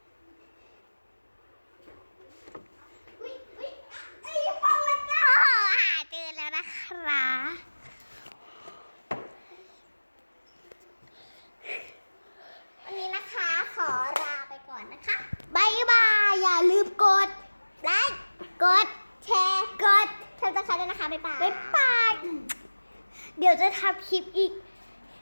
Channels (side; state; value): both; inverted; correlation -1.00